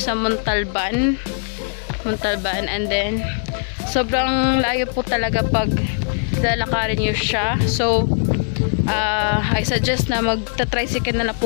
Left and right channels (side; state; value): right; silent; 66 dB below the other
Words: Montalban and then sobrang layo po talaga pag lalakarin nyo siya. So I suggest na magta-tricycle na lang po